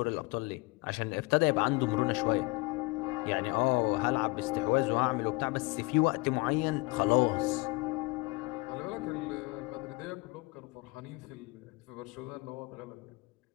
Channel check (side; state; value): right; quieter; 25.7 dB